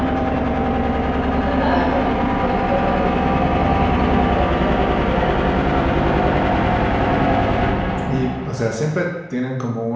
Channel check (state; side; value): identical; both; correlation 1.00